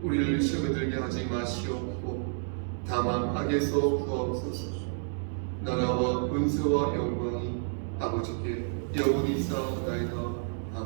우리를 시험에 들게 하지 마시옵고 다만 악에서 구하옵소서. 나라와 은혜와 영광이 아버지께 영원히 쌓아나이다.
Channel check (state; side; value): silent; left; digital silence